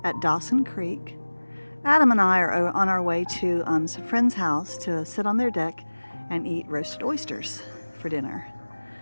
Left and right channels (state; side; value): inverted; both; correlation -1.00